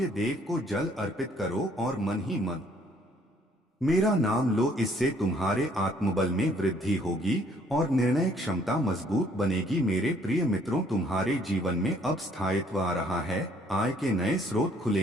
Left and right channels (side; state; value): both; normal; correlation 0.63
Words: देव को जल अर्पित करो और मन ही मन मेरा नाम लो। इससे तुम्हारे आत्मबल में वृद्धि होगी और निर्णय क्षमता मजबूत बनेगी। मेरे प्रिय मित्रों, तुम्हारे जीवन में अब स्थायित्व आ रहा है। आय के नए स्रोत